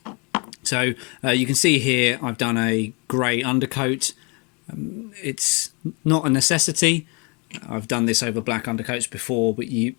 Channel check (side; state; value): right; quieter; 31.9 dB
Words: So you can see here I've done a grey undercoat. It's not a necessity. I've done this over black undercoats before, but you